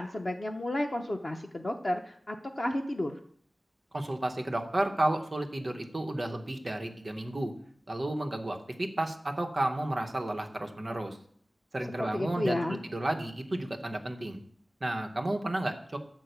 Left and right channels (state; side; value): normal; both; correlation 0.97